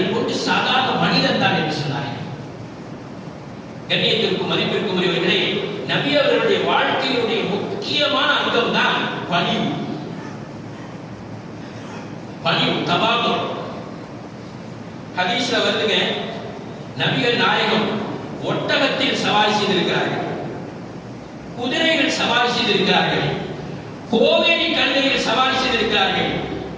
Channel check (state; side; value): identical; both; correlation 1.00